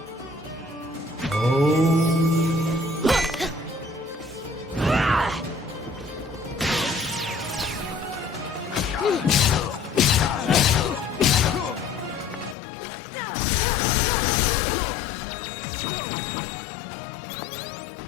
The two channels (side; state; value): right; drops out; at 12.6 s